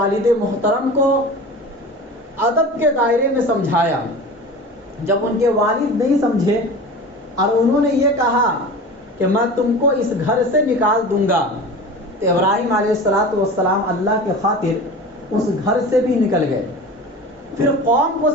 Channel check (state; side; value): normal; both; correlation 0.34